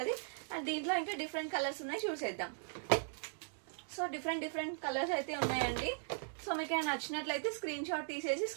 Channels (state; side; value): silent; left; digital silence